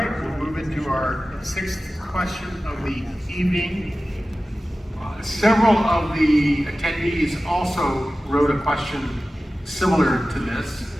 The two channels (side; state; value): both; normal; correlation 0.95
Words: we'll move into our 6th question of the evening. Several of the attendees also wrote a question similar to this,